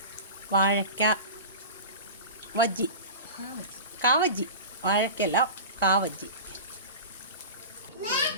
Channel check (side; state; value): both; inverted; correlation -0.32